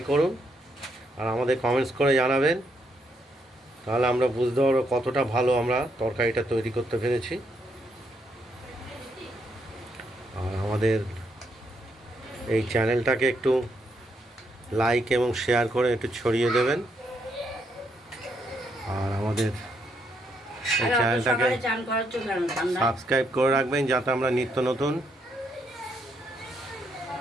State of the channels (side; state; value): both; normal; correlation 0.76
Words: করুন আর আমাদের কমেন্টস করে জানাবেন, তাহলে আমরা বুঝতে পারবো কতটা ভালো আমরা তরকারিটা তৈরি করতে পেরেছি। আর আমাদের এই চ্যানেলটাকে একটু লাইক এবং শেয়ার করে একটু ছড়িয়ে দেবেন। আর আমাদের এই চ্যানেলটাকে সকালে চান করাচ্ছ কেন? ঠান্ডা। সাবস্ক্রাইব করে রাখবেন, যাতে আমরা নিত্য নতুন